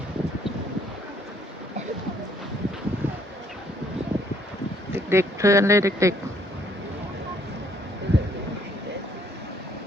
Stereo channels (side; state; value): both; normal; correlation 0.64